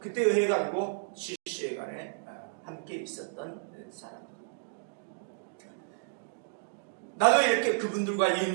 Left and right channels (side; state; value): left; silent; digital silence